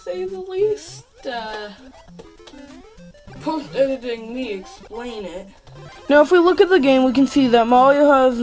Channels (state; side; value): identical; both; correlation 1.00